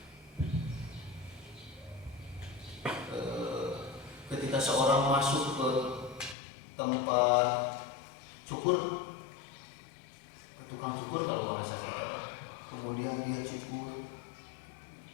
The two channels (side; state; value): right; drops out; at 6.4 s